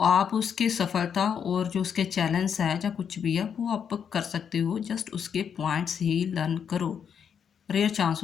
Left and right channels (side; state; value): right; quieter; 7.6 dB